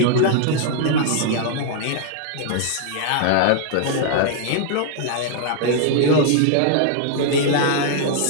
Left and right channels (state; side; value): different; both; correlation -0.01